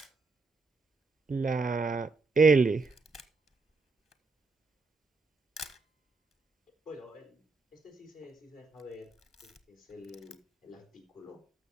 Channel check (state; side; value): quieter; left; 4.1 dB